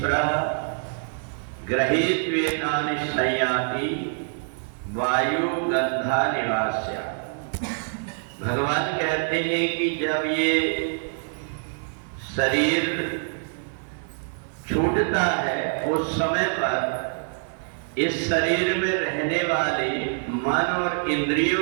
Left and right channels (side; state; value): left; silent; digital silence